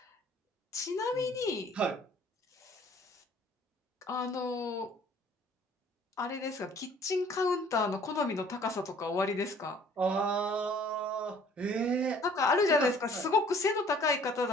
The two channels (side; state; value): both; normal; correlation 0.55